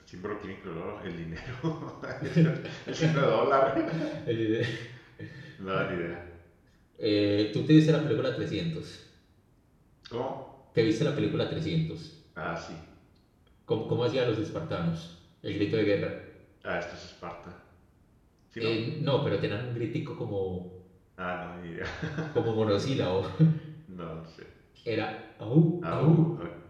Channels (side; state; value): both; identical; correlation 1.00